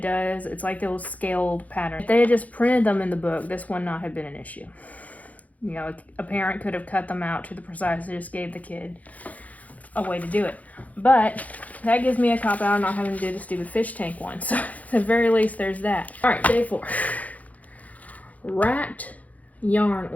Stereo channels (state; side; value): late; right; 0.073 ms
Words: like those scaled patterns. If they had just printed them in the book, this would not have been an issue. You know, a parent could have cut them out to the precise and just gave the kid a way to do it. But that gives me a cop-out on not having to do the stupid fish tank one. So at the very least, there's that. All right, day 4. Wrapped yarn